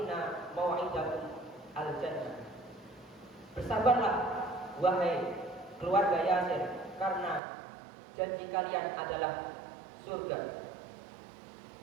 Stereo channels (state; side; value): drops out; left; at 7.4 s